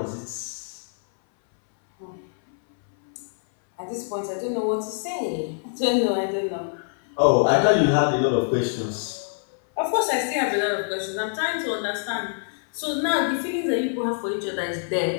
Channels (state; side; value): silent; right; 60 dB below the other